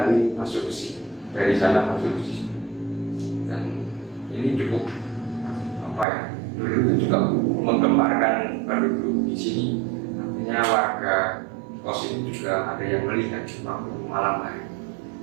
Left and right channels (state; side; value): drops out; left; at 6.1 s